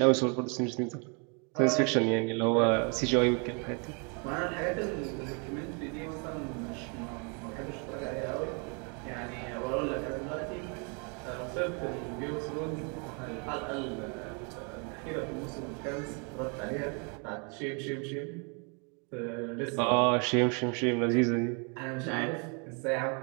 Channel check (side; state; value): left; quieter; 35.5 dB